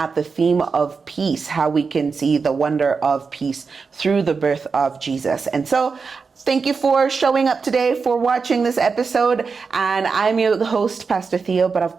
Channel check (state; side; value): quieter; left; 5.0 dB